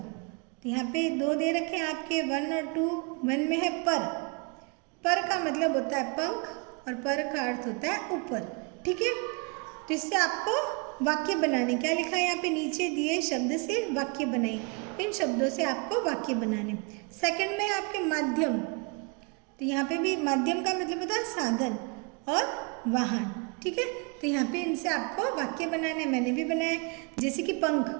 तो यहाँ पे 2 दे रखे हैं आपके 1 और 2। 1 में है पर का मतलब होता है पंख और पर का अर्थ होता है ऊपर। ठीक है, तो इससे आपको वाक्य बनाने, क्या लिखा है यहाँ पे, नीचे दिए शब्द से वाक्य बनाए। इन शब्दों से आपको वाक्य बनाने। सेकंड में है आपके माध्यम, तो यहाँ पे भी माध्यम का मतलब होता है साधन और वाहन। ठीक है, तो यहाँ पे इनसे आपको वाक्य बनाने, मैंने भी बनाए। जैसे कि पंख,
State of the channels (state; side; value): quieter; left; 32.9 dB